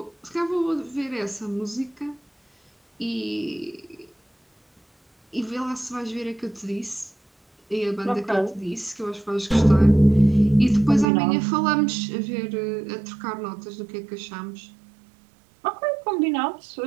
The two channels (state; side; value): drops out; left; at 11.1 s